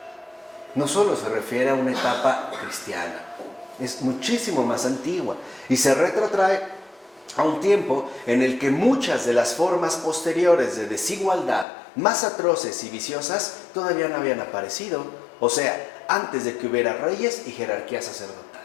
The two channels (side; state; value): right; drops out; at 11.7 s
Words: No solo se refiere a una etapa cristiana, es muchísimo más antigua y se retrotrae a un tiempo en el que muchas de las formas posteriores de desigualdad más atroces y viciosas todavía no habían aparecido, o sea, antes de que hubiera reyes y jerarquías